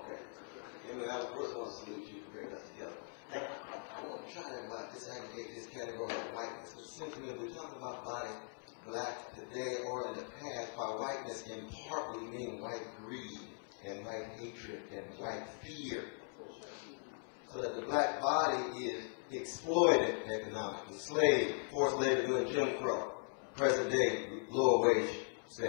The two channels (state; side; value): silent; right; 51 dB below the other